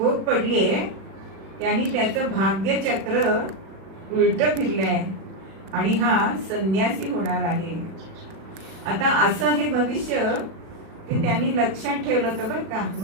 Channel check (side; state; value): left; late; 37 ms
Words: पडलीये त्यांनी त्याचं भाग्यचक्र उलट फिरलंय आणि हा संन्यासी होणार आहे. आता असं हे भविष्य ते त्यांनी लक्षात ठेवलं होतं बरं का